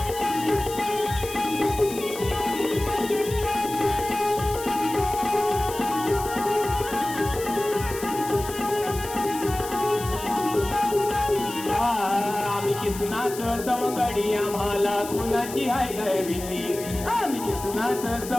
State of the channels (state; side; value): noise; left; hiss, 12 dB below the sound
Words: आम्ही किसनाचं सवंगडी, आम्हाला कुणाची हाय गाय भीती. आम्ही किसनाचं